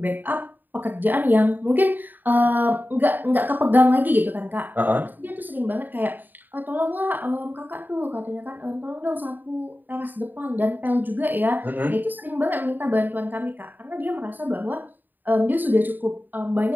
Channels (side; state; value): left; late; 0.089 ms